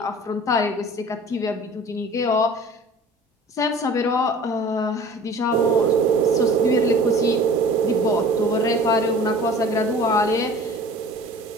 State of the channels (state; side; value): normal; both; correlation 0.44